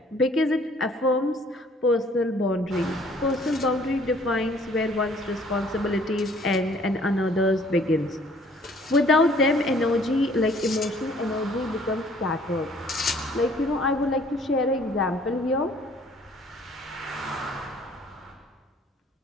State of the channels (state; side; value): normal; both; correlation 0.58